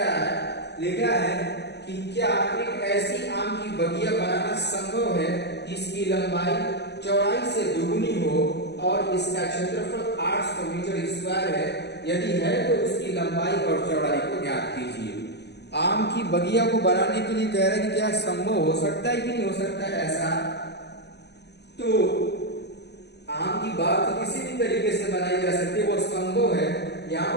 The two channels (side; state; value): right; late; 0.50 ms